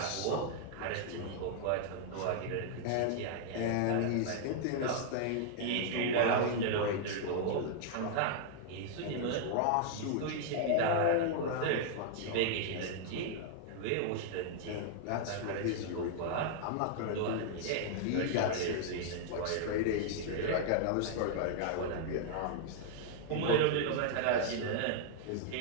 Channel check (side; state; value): both; different; correlation -0.01